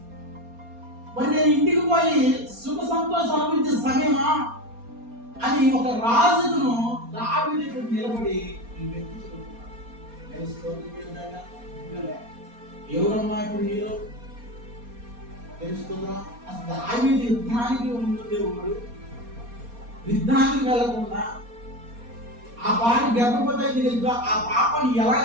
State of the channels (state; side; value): late; left; 4.3 ms